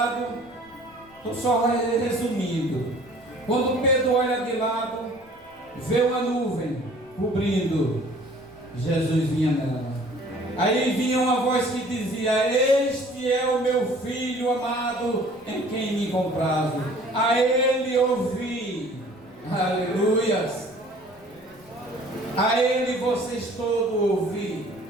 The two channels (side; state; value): left; noise; rumble, 29 dB below the sound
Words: estou só resumindo. Quando Pedro olha de lado, vê uma nuvem cobrindo. Jesus vinha nela. Aí vinha uma voz que dizia: este é o meu filho amado, em quem me comprazo. A ele ouvi. Aleluias. A ele vocês todos ouvi.